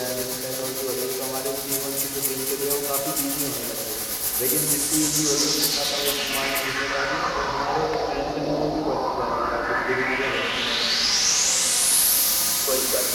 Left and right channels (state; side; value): identical; both; correlation 1.00